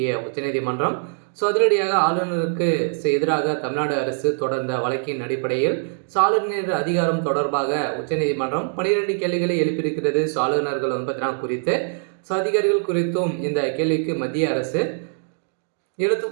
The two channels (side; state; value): left; silent; digital silence